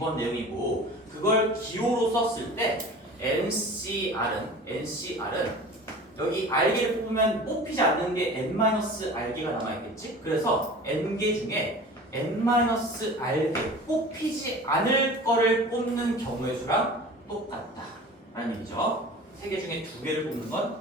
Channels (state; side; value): normal; both; correlation 0.39